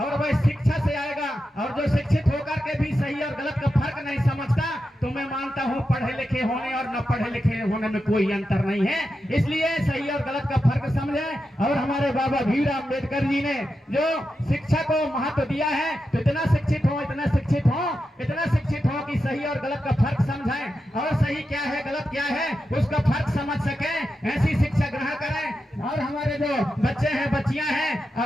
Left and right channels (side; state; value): both; normal; correlation 0.89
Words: वह शिक्षा से आएगा। और जो शिक्षित होकर के भी सही और गलत का फर्क नहीं समझता, तो मैं मानता हूं पढ़े लिखे होने और न पढ़े लिखे होने में कोई अंतर नहीं है। इसलिए सही और गलत का फर्क समझें। और हमारे बाबा भीमराव अम्बेडकर जी ने जो शिक्षा को महत्व दिया है, तो इतना शिक्षित हो, इतना शिक्षित हो, इतना शिक्षित हो कि सही और गलत का फर्क समझें, और सही क्या है, गलत क्या है, उसका फर्क समझ सकें। ऐसी शिक्षा ग्रहण करें। और हमारे जो बच्चे हैं, बच्चियां हैं,